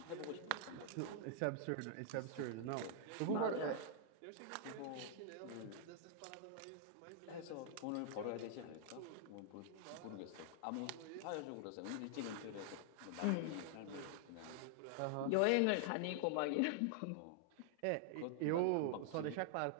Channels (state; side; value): different; both; correlation 0.00